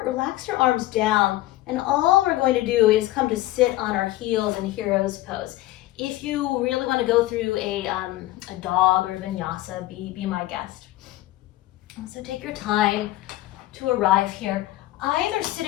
relax your arms down, and all we're going to do is come to sit on our heels in hero's pose. If you really want to go through a dog or vinyasa, be my guest. So take your time to arrive here, either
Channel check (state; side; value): quieter; right; 16.7 dB